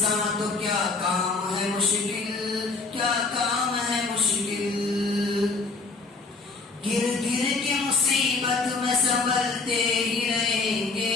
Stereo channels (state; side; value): quieter; right; 3.9 dB